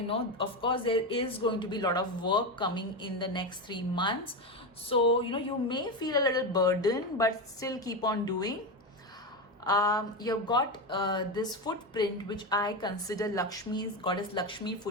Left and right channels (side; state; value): both; normal; correlation 0.15